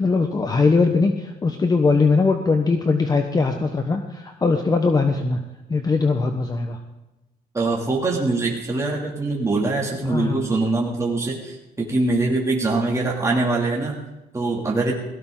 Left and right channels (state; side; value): normal; both; correlation 0.78